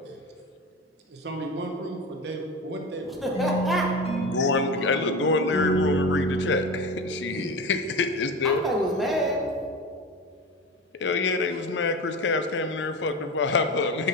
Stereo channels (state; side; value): normal; both; correlation 0.26